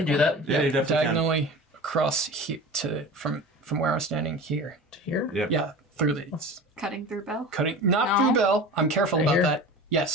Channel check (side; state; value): both; normal; correlation 0.35